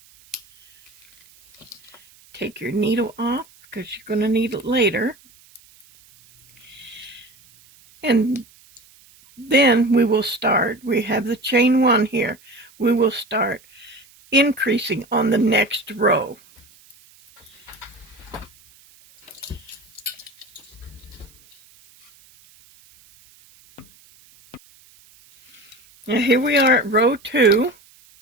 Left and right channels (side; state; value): right; noise; hiss, 28 dB below the sound